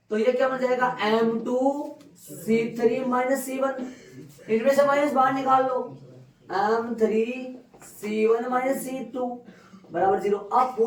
तो ये क्या बन जाएगा? M2 C3 minus C1। इनमें से माइनस बाहर निकाल लो, m3 c1 माइनस c2 बराबर 0। अब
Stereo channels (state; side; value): identical; both; correlation 1.00